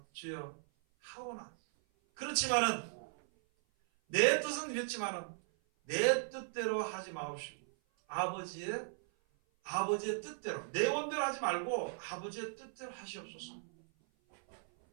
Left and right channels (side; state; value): left; silent; 53 dB below the other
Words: 주여 하오나 그렇지만은 내 뜻은 이랬지만은 내 뜻대로 하지 마옵시고 아버지의 뜻대로 내 원대로 하지 말고 아버지의 뜻대로 하시옵소서.